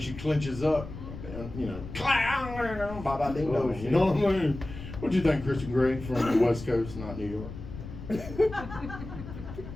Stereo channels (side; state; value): left; noise; rumble, 11 dB below the sound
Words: clenches up, you know, bye ding dong. You know what I mean? What do you think, Christian Gray from the West Coast, not New York?